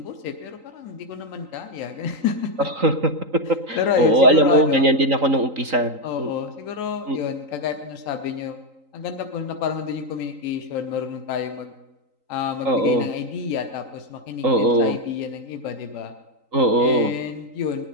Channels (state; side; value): late; left; 3.8 ms